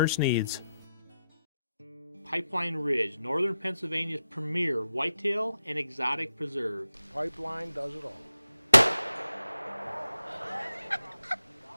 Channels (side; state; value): both; inverted; correlation -0.87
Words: needs, Pipeline Ridge, Northern Pennsylvania's premier whitetail and exotic preserve. Pipeline does it all.